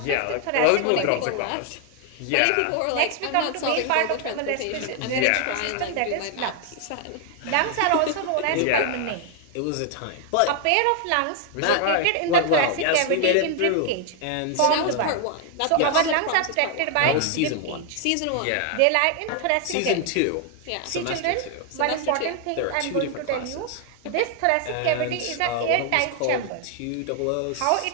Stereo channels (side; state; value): both; different; correlation 0.00